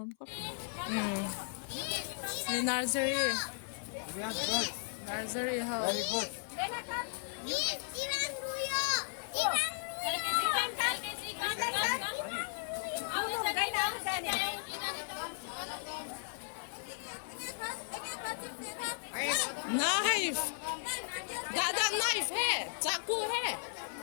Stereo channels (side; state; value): right; silent; 54 dB below the other